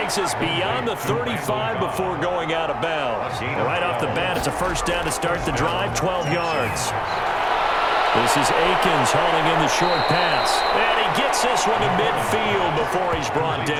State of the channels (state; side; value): identical; both; correlation 1.00